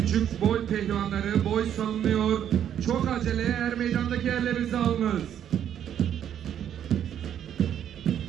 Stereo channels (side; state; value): left; quieter; 9.8 dB